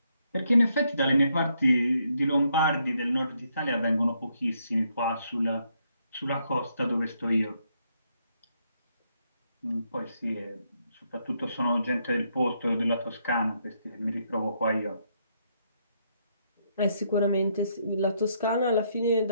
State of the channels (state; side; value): inverted; both; correlation -0.75